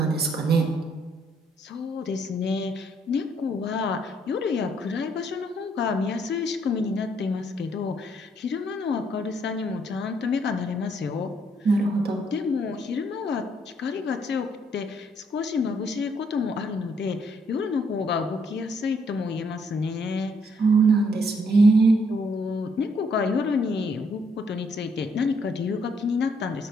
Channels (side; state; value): both; normal; correlation 0.70